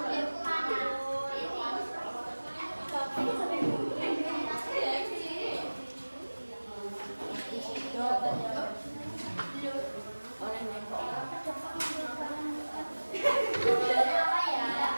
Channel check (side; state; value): both; inverted; correlation -1.00